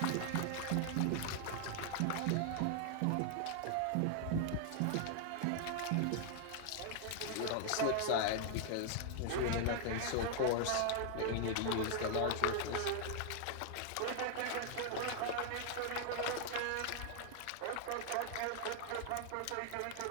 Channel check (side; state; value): both; different; correlation 0.00